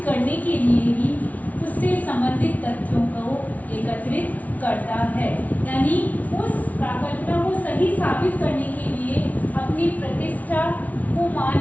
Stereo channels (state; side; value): late; right; 0.072 ms